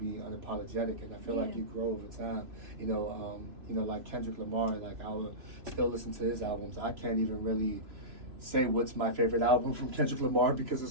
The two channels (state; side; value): late; left; 3.0 ms